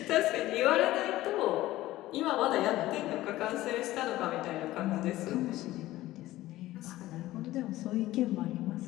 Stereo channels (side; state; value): right; quieter; 16.2 dB